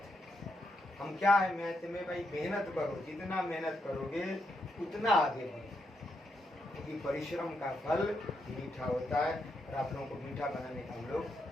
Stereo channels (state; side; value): normal; both; correlation 0.81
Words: हम क्या है मैथ में भाई, मेहनत करो, जितना मेहनत करोगे उतना आगे बढ़ो, क्योंकि परिश्रम का फल मीठा होता है। और आप लोगों को मीठा बनाने का हम लोग